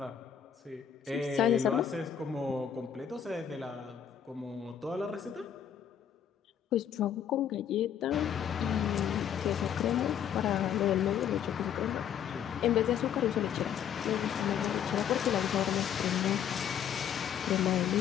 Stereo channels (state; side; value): quieter; right; 8.9 dB